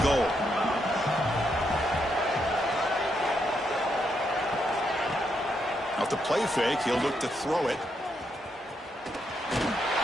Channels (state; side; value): normal; both; correlation 0.79